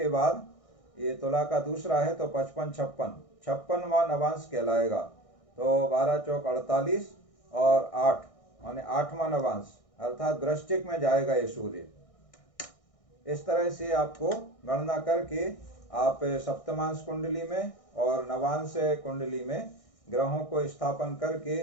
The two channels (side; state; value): right; late; 1.6 ms